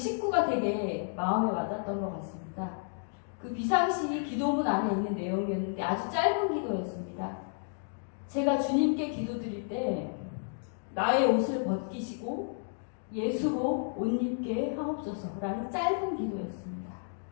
되게 마음에 와닿았던 것 같습니다. 그 비상시 기도문 안에 있는 내용이었는데 아주 짧은 기도였습니다. 제가 주님께 기도드릴 때 나의 옷을 벗기시고 예수로 옷 입게 하옵소서라는 짧은 기도였습니다.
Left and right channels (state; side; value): silent; right; digital silence